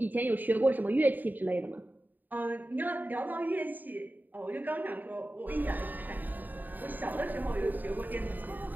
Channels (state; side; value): late; left; 0.087 ms